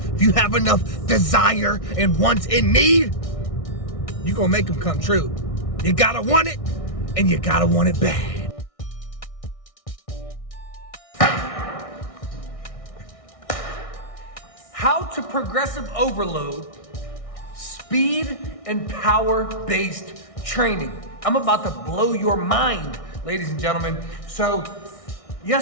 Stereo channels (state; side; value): late; right; 1.6 ms